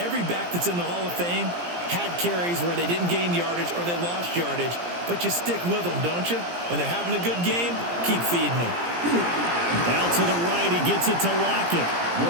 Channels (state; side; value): late; left; 17 ms